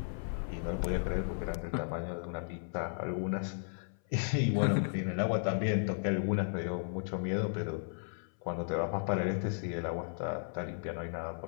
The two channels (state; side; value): silent; right; 55 dB below the other